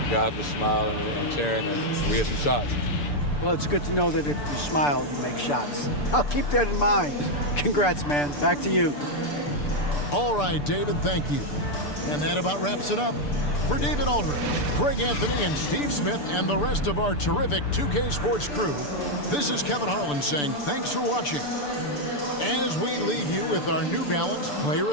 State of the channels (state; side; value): late; right; 6.8 ms